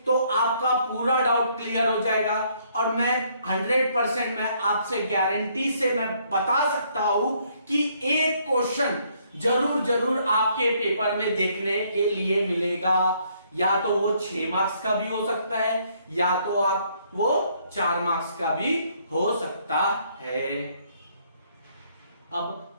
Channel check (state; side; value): inverted; both; correlation -0.67